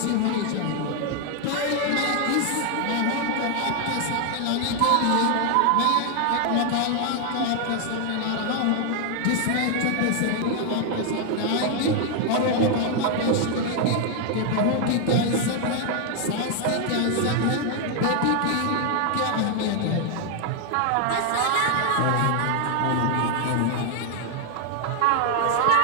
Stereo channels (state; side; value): different; both; correlation 0.00